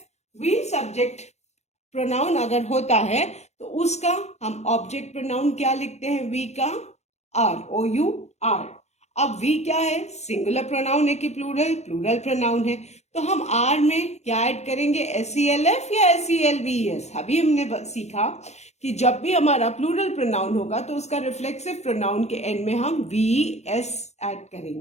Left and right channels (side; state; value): right; late; 0.32 ms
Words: वी सब्जेक्ट प्रोनाउन अगर होता है तो उसका हम ऑब्जेक्ट प्रोनाउन क्या लिखते हैं, वी का आर, OUR. अब वी क्या है, सिंगुलर प्रोनाउन है कि प्लूरल, प्लूरल प्रोनाउन है. तो हम आर में क्या ऐड करेंगे, SELF या SELVES. अभी हमने सीखा कि जब भी हमारा प्लूरल प्रोनाउन होगा तो उसका रिफ्लेक्सिव प्रोनाउन के एंड में हम VS ऐड